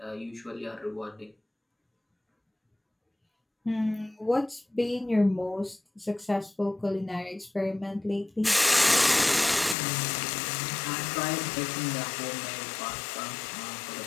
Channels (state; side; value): drops out; right; at 9.8 s